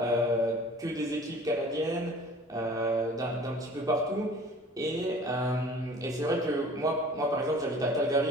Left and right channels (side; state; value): both; normal; correlation 0.47